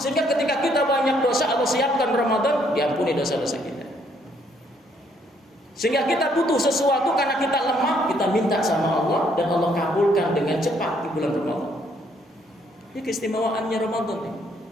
ketika kita banyak dosa, Allah siapkan Ramadan, diampuni dosa-dosa kita. Sehingga kita butuh sesuatu karena kita lemah, kita minta sama Allah dan Allah kabulkan dengan cepat di bulan Ramadan. Ini keistimewaannya Ramadan nih.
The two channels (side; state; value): both; normal; correlation 0.68